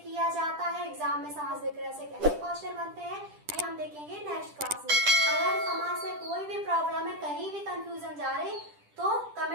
जाता है, एग्जाम में समास विग्रह से कैसे क्वेश्चन बनते हैं, ये हम देखेंगे नेक्स्ट क्लास में। अगर समास में कोई भी प्रॉब्लम है, कहीं भी कंफ्यूजन जा रही तो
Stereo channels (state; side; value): late; left; 10 ms